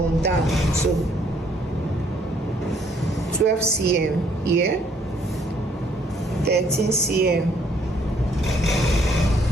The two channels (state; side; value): normal; both; correlation 0.65